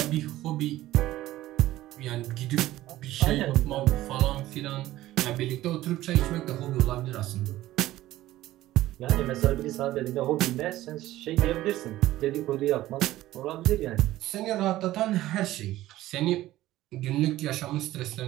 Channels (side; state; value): left; quieter; 15.4 dB